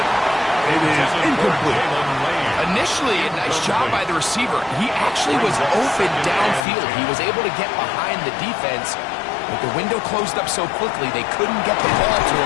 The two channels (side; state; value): right; drops out; at 6.7 s